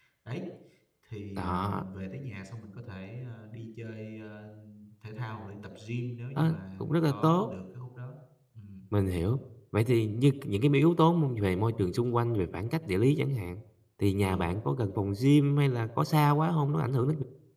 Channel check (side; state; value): both; identical; correlation 1.00